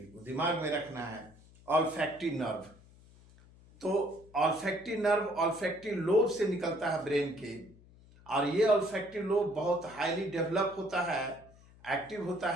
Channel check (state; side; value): noise; left; hum, 24 dB below the sound